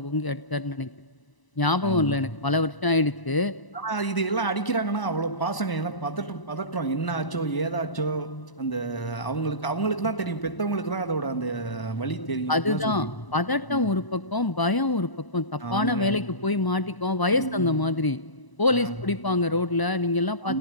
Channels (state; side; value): late; right; 1.0 ms